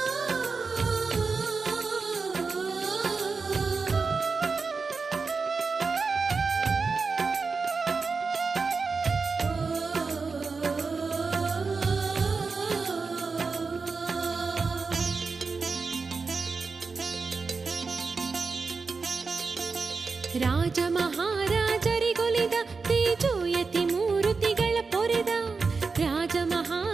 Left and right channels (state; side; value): quieter; left; 4.6 dB